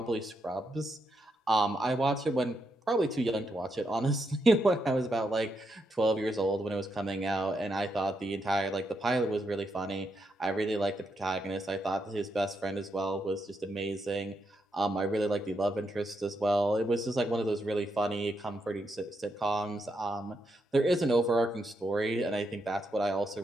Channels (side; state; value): both; normal; correlation 0.81